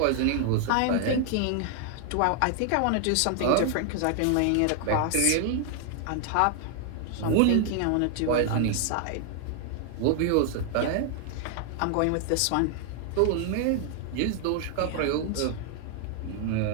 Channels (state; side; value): different; both; correlation 0.00